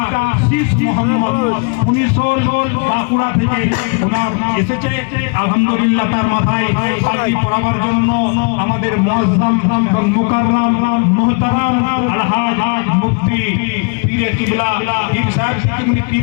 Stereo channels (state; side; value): quieter; right; 35.9 dB